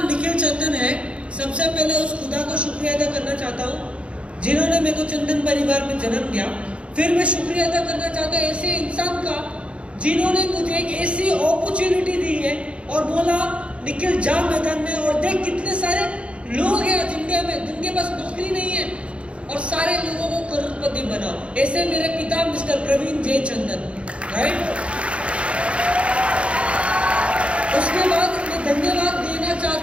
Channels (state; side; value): late; left; 0.060 ms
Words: निखिल चंदन है। सबसे पहले उस खुदा को शुक्रिया अदा करना चाहता हूँ जिन्होंने मेरे को चंदन परिवार में जन्म दिया। फिर मैं शुक्रिया अदा करना चाहता हूँ ऐसे इंसान का जिन्होंने मुझे एक ऐसी अपॉर्चुनिटी दी है और बोला निखिल जा मैदान में और देख कितने सारे लोग हैं आज इंडिया में जिनके पास नौकरी नहीं है और सारे लोगों को करोड़पति बनाओ। ऐसे मेरे पिता मिस्टर प्रवीण जे चंदन, राइट। उसके बाद मैं धन्यवाद देना